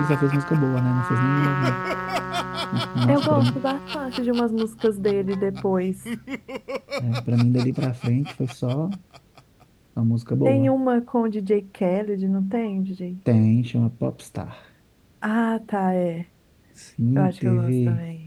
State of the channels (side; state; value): both; identical; correlation 1.00